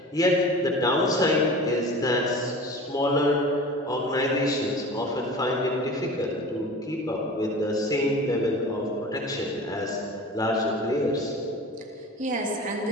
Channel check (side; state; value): both; normal; correlation 0.37